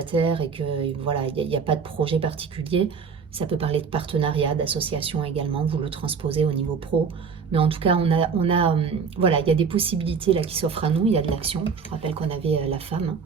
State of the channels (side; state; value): left; quieter; 5.8 dB